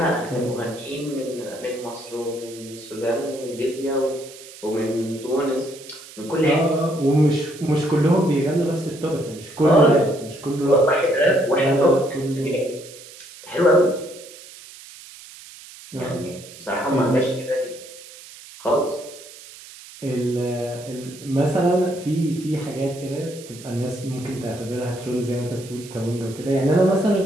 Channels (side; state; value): right; noise; hiss, 18 dB below the sound